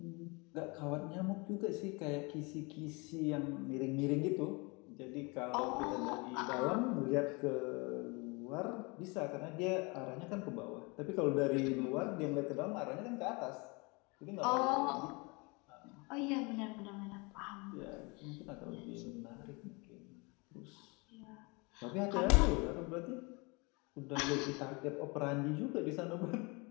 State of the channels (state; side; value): quieter; right; 28.5 dB